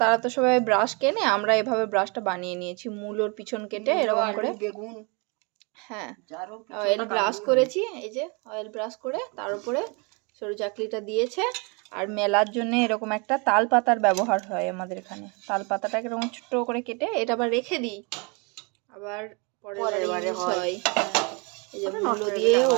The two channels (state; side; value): quieter; left; 31.6 dB